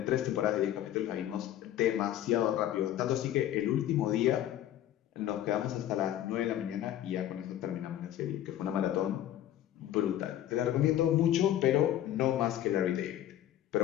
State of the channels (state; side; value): quieter; right; 12.1 dB